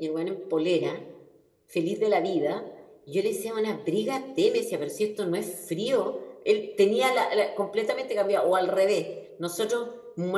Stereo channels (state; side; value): identical; both; correlation 1.00